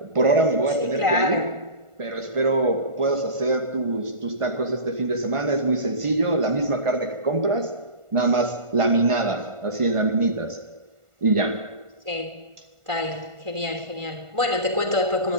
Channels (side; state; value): left; late; 1.5 ms